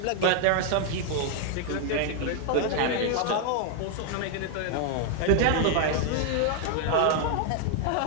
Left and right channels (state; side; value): different; both; correlation 0.00